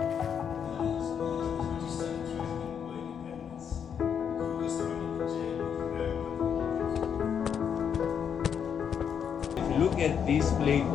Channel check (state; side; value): quieter; right; 7.7 dB